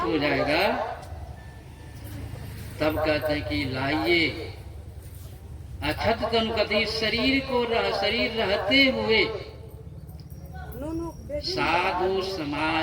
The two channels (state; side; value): identical; both; correlation 1.00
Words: जाएगा, तब कहते हैं कि लाइए अछत तन, कहते शरीर को शरीर रहते हुए साधु